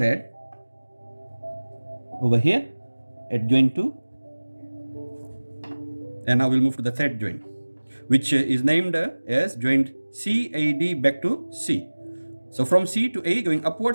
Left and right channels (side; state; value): both; inverted; correlation -1.00